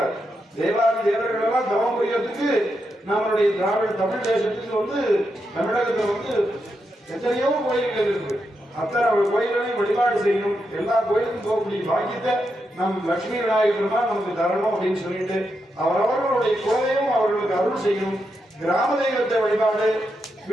தேவாதி தேவர்கள் எல்லாம் தவம் புரியறதுக்கு நம்மளுடைய திராவிட தமிழ் தேசத்துக்கு வந்து தமிழகத்துல வந்து எத்தனையோ கோயில்கள் இருக்கு. அத்தனை கோயில்களையும் வழிபாடு செய்யணும். எல்லா கோயிலுக்கும் போகக்கூடிய பாக்கியத்தை நம் லட்சுமி விநாயகர் பெருமாள் நமக்கு தரணும் அப்படின்னு சொல்லிட்டு அவரவர்களுடைய குலதெய்வம் அவர்களுக்கு அருள் செய்யணும். கிராம தெய்வத்தை வழிபாடு,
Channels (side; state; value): both; normal; correlation 0.84